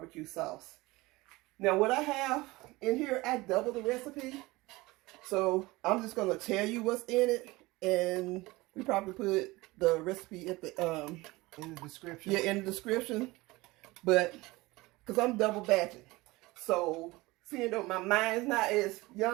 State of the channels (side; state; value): left; quieter; 21.1 dB